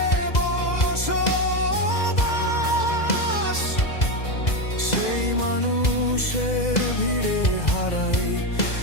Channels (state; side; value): late; right; 2.0 ms